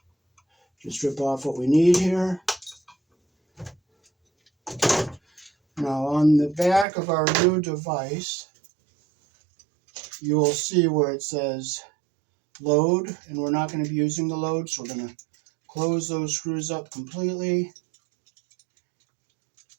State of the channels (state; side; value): drops out; left; at 6.9 s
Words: just strip off what we need here. Now on the back of our new device, you will see where it says load, and we're not going to be using the load, so we're going to close those screws up completely.